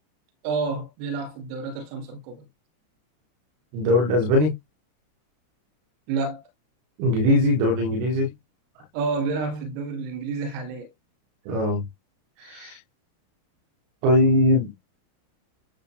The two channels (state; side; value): late; left; 32 ms